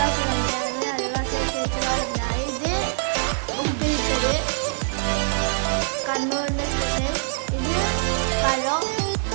തന്നെയാണ്, അയൽവാസി ചേച്ചി പറഞ്ഞ. ഇത് ഉപ്പിലിട്ടത്, കണ്ണൂരിൻ്റെ സ്പെഷ്യൽ. ഇത് പഴം,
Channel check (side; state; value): left; silent; digital silence